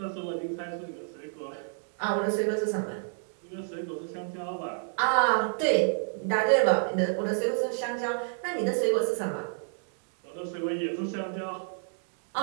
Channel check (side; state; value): left; silent; 58 dB below the other